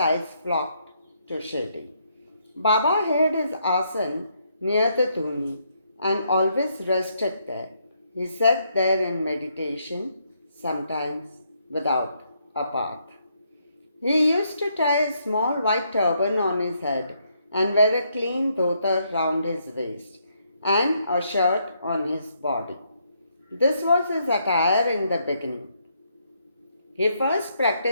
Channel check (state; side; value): inverted; both; correlation -0.75